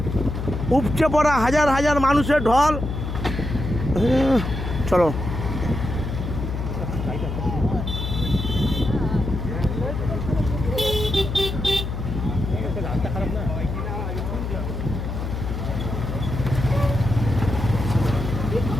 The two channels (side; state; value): left; noise; hum, 4 dB below the sound